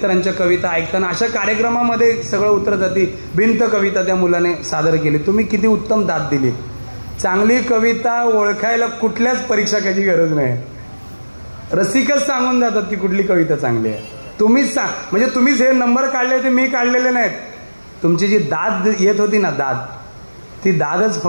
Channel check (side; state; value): both; inverted; correlation -1.00